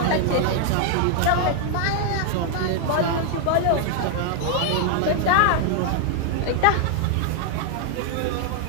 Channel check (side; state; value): both; different; correlation 0.00